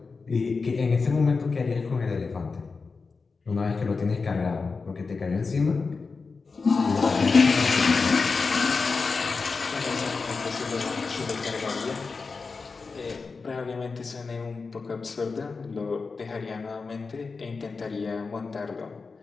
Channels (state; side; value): quieter; right; 4.5 dB